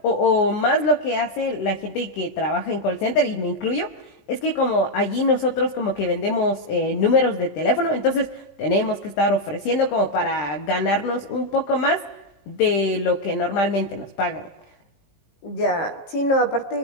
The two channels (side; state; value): right; late; 19 ms